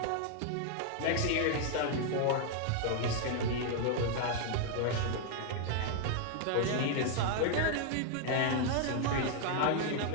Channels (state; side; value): different; both; correlation 0.00